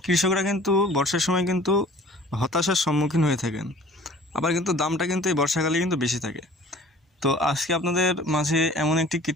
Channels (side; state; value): both; normal; correlation 0.49